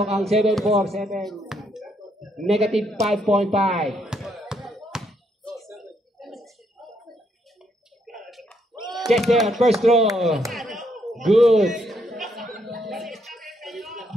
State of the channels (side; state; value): both; normal; correlation 0.74